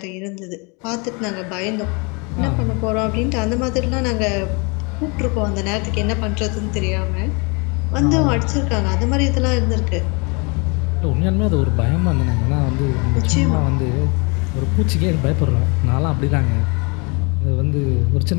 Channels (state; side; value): quieter; right; 31.0 dB